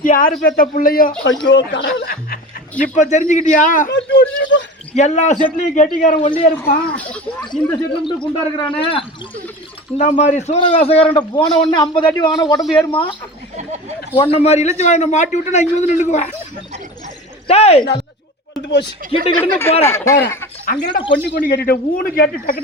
யாரு பெத்த பிள்ளையோ? ஐயோ இப்ப தெரிஞ்சுக்கிட்டியா? எல்லா செட்லயும் கெட்டிக்காரன் ஒல்லியா இருப்பான், இந்த செட்ல மட்டும் குண்டா இருக்கிறானே. இந்த மாதிரி சூரவேசக்காரன் போன உடனே 50 அடி வாங்கின உடம்பு ஏறுமா? உன்ன மாதிரி இழுச்சி வாங்க மாட்டி விட்டு நான் இங்க வந்து நின்றுக்குவேன். டேய் கிட்ட கிட்ட போறேன் அங்க கொண்டு கொண்டு கேட்டுட்டு ஊனு கேட்டு டக்கு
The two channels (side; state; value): both; normal; correlation 0.33